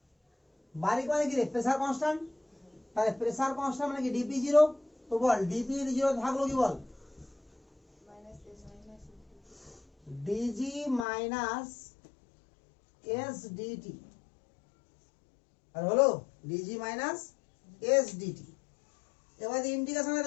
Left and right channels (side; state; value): right; drops out; at 11.1 s